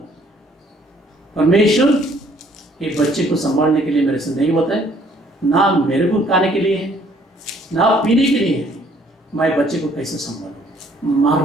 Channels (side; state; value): both; normal; correlation 0.61